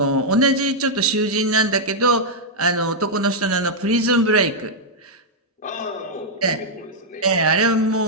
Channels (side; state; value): both; normal; correlation -0.05